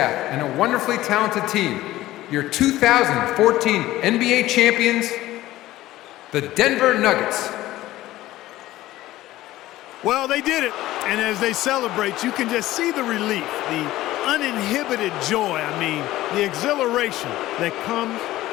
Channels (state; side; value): quieter; right; 15.9 dB